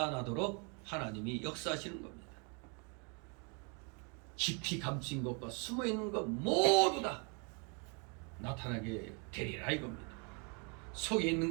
하나님이 역사하시는 겁니다. 깊이 감춘 것과 숨어 있는 것 모두 다 나타나게 되리라 이겁니다. 속에 있는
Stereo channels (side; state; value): left; quieter; 35.0 dB